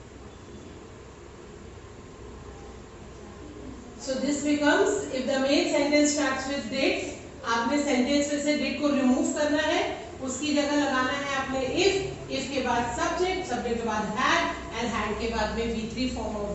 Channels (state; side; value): identical; both; correlation 1.00